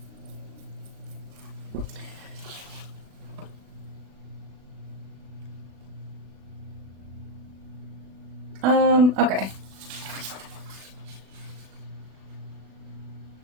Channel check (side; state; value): left; late; 36 ms